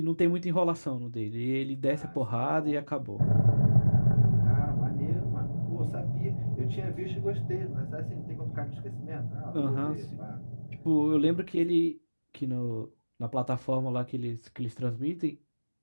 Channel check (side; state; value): both; inverted; correlation -1.00